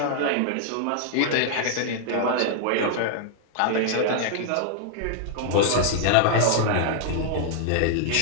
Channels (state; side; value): different; both; correlation 0.00